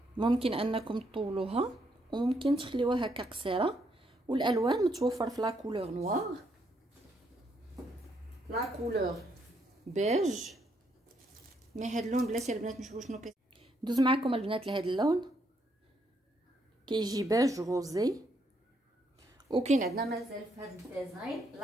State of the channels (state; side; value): normal; both; correlation 0.74